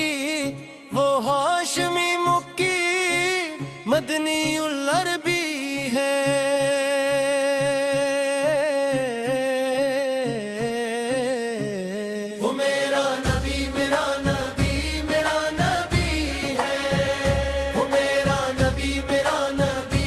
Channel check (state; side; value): identical; both; correlation 1.00